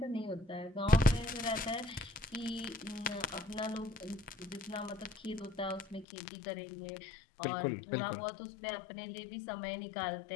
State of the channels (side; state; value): right; drops out; at 6.1 s